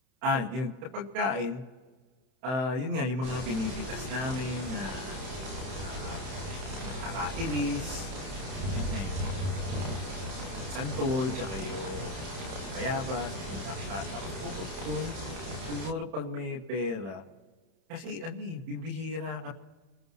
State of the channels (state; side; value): late; left; 31 ms